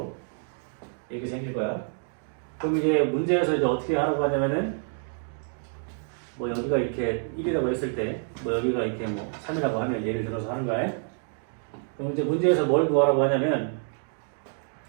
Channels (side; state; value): left; silent; 60 dB below the other